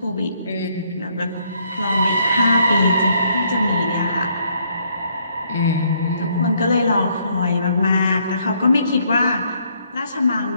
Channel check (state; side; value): inverted; both; correlation -0.69